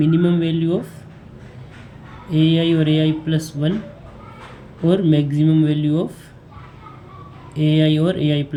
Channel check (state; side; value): identical; both; correlation 1.00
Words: वैल्यू ऑफ AI और AI+1 और मैक्सिमम वैल्यू ऑफ AI और